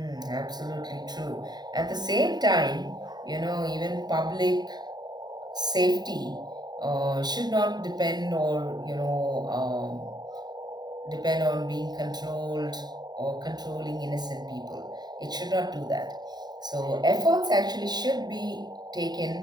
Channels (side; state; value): left; late; 0.20 ms